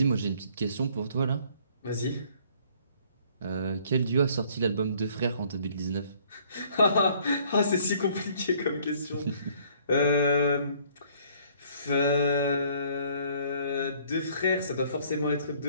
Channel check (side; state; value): both; inverted; correlation -0.60